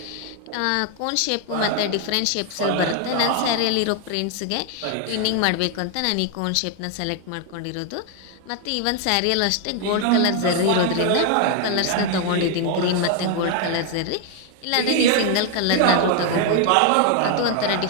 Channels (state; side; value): different; both; correlation 0.00